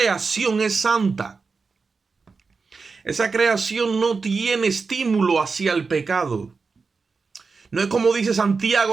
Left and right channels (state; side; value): quieter; left; 4.6 dB